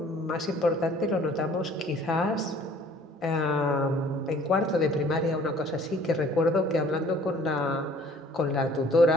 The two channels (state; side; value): normal; both; correlation 0.54